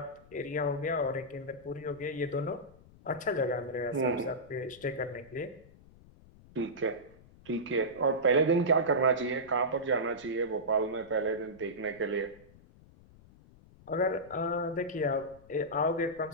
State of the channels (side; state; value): left; noise; rumble, 24 dB below the sound